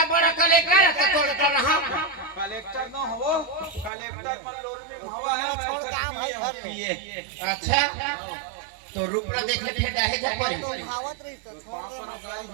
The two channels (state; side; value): drops out; left; at 3.9 s